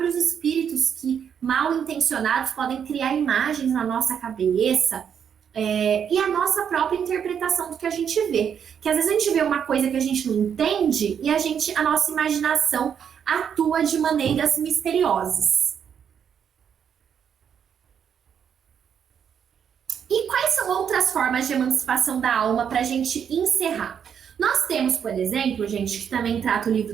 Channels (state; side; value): quieter; left; 7.9 dB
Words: espíritos que, mal intencionados, podem criar imagens na nossa cabeça, e a nossa própria interpretação do que a gente vê. Que às vezes a gente vê uma coisa que a gente não entende e a nossa imaginação atua de maneiras misteriosas. E quais são outras formas de emancipação da alma para a gente encerrar? Nós temos, por exemplo, gente, que também trata o